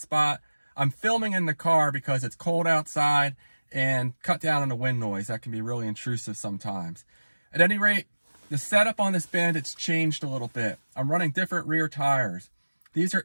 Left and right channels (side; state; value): both; inverted; correlation -1.00